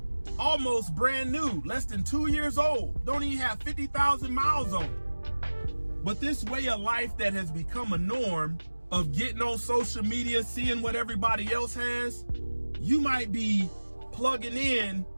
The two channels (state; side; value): inverted; both; correlation -1.00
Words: almost brand new, less than 2 years old, don't even have 50,000 miles on it. But this way of life that has become a norm of getting on social media, seeing what everybody else has, you might be plugging in,